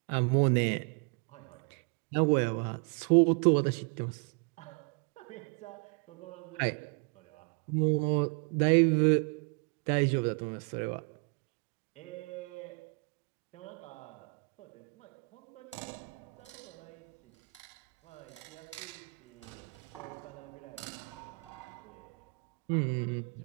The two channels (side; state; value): left; quieter; 34.8 dB